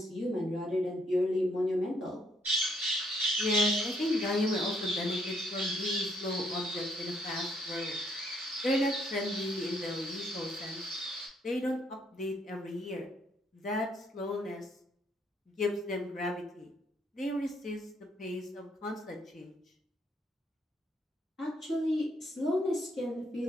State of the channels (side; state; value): both; normal; correlation 0.70